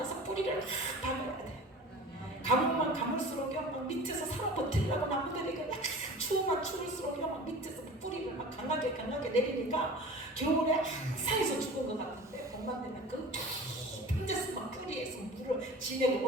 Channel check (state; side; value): normal; both; correlation 0.39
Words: 뿌리를 막 박아야 돼. 가물만 가물수록 막 밑에서 살아 버티려고 나무들이 약간 추우면 추울수록 막 밑에서 뿌리를 막 강하게 내리니까 겨울에 항상에서 죽은 것 같은데 봄만 되면 그 깊은 데서 막 뿌리에서 물을 진액을